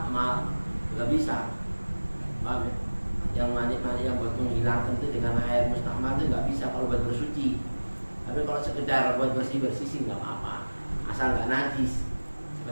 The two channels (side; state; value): both; inverted; correlation -1.00